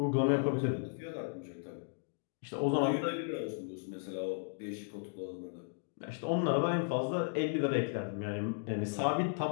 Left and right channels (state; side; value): silent; right; digital silence